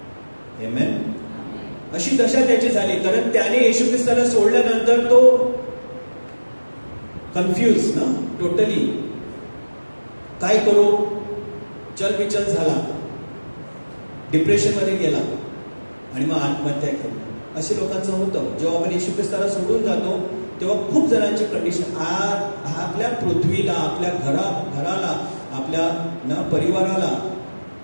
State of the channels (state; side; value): inverted; both; correlation -1.00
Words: आमेन. अशी दशा त्याची झाली, कारण त्याने येशू ख्रिस्ताला सोडल्यानंतर तो कन्फ्यूज ना, टोटली काय करू, चलबिचल झाला, डिप्रेशन मध्ये गेला आणि मग आत्महत्या केली. असे लोकांचं होतं. जेव्हा आपण येशू ख्रिस्ताला सोडून जातो, तेव्हा खूप जणांची कंडिशन, आपल्या पृथ्वीला, आपल्या घराला, आपल्या परिवाराला,